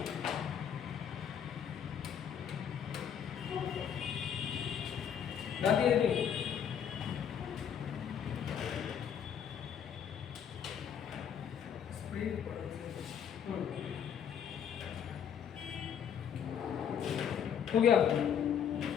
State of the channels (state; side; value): quieter; right; 8.3 dB